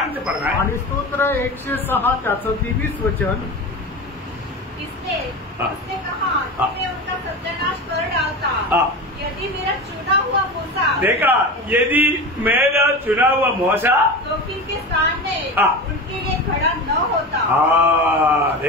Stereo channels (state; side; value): normal; both; correlation 0.27